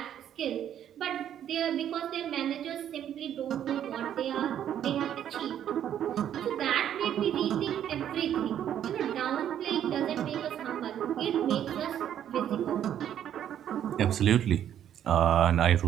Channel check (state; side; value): quieter; left; 10.2 dB